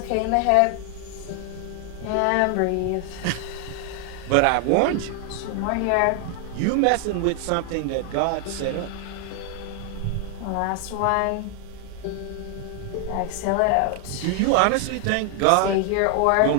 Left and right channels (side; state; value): both; different; correlation 0.00